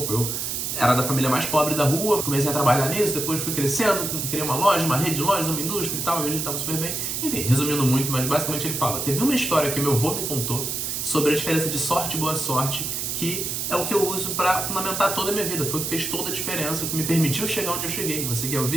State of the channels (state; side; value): noise; right; hiss, 2 dB below the sound